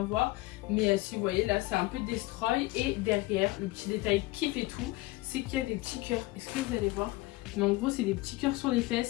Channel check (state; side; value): quieter; right; 20.0 dB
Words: voir. Mais si vous voyez là c'est un peu destroy. Et derrière le petit détail qui fait tout, c'est qu'il y a des petits cœurs. Est-ce que vous allez voir? Mais en gros c'est des petits cœurs sur les